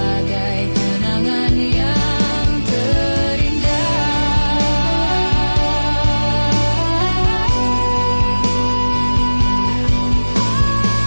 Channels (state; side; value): inverted; both; correlation -1.00